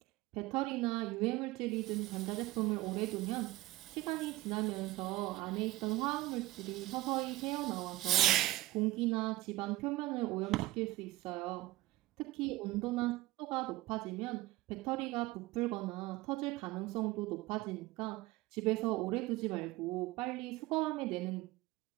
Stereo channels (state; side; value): quieter; left; 18.2 dB